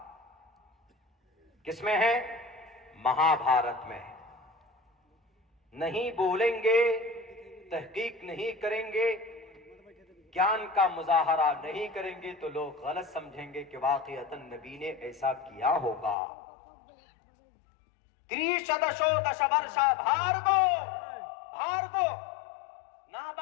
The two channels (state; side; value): drops out; right; at 16.2 s